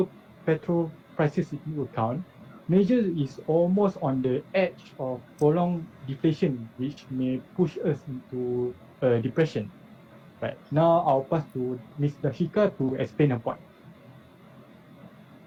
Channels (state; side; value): identical; both; correlation 1.00